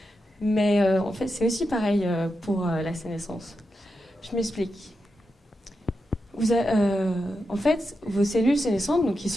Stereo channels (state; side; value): normal; both; correlation 0.87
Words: mais en fait c'est aussi pareil pour la sénescence. Je m'explique. En fait, vos cellules sénescentes, donc qui